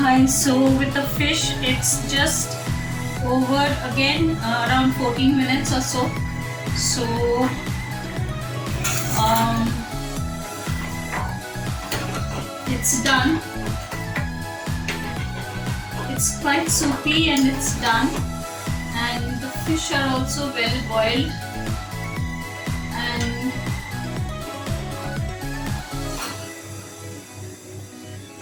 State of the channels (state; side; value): identical; both; correlation 1.00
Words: Hi, so with the fish, it's just over again around 14 minutes or so. So it's done. It's quite soupy and it's done. And the fish are also well boiled. And